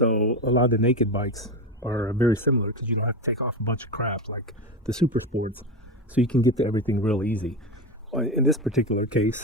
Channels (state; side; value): normal; both; correlation 0.18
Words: a lot of the naked bikes are very similar because you don't have to take off a bunch of crap like the Super Sports. So you can get to everything real easy. In this particular